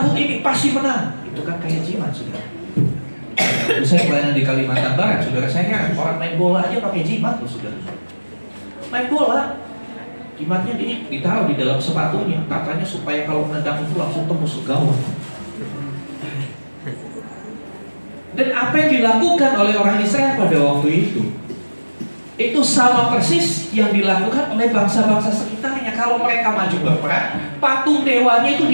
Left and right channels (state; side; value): inverted; both; correlation -1.00